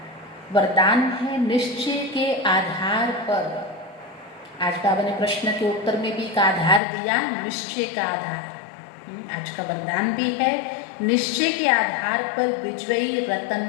वरदान है निश्चय के आधार पर। आज बाबा ने प्रश्न के उत्तर में भी एक आधार दिया, निश्चय का आधार। आज का वरदान भी है निश्चय के आधार पर विजयी रतन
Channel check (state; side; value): drops out; right; at 6.8 s